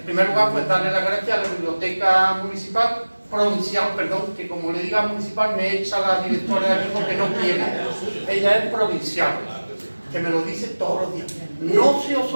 primer lugar, pues darle las gracias a la Biblioteca Municipal, provincial, perdón, que como le diga municipal me echa la directora de aquí porque no quiere. Ella es provincial, que me lo dice todos los días. No se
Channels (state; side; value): inverted; both; correlation -1.00